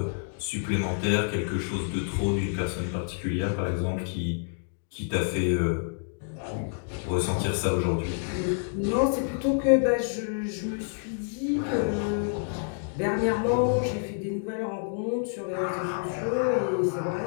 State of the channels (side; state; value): right; silent; digital silence